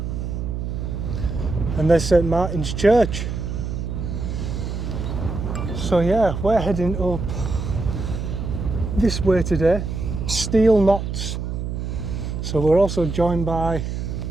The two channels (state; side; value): noise; right; hum, 4 dB below the sound